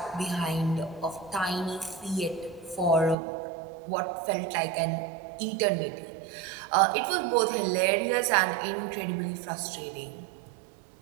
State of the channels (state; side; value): drops out; left; at 3.2 s